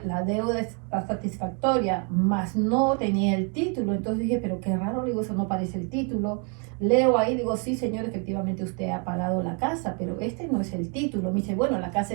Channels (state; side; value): quieter; left; 37.8 dB